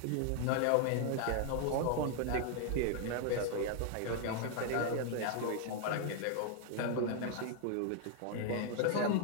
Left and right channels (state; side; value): different; both; correlation 0.00